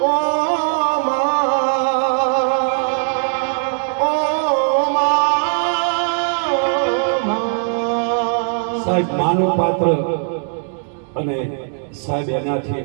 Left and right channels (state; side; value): silent; left; digital silence